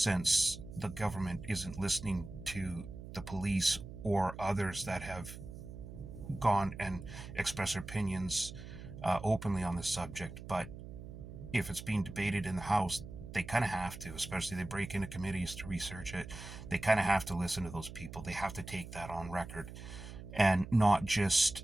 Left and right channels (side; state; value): right; noise; hum, 12 dB below the sound